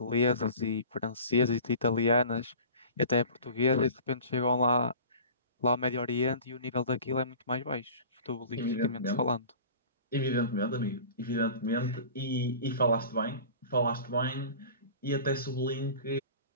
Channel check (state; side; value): inverted; both; correlation -0.41